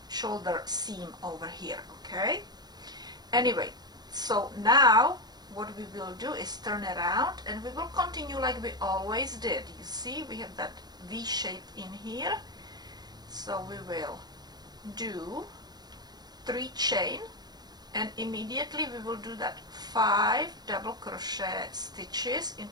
seam over here. Okay, anyway, so now what we will do is turn around and we will continue like we always did. You see, we have that V shape in here. So we will do 3 chain, and immediately we will do that 5 double crochet stitches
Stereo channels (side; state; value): left; late; 0.20 ms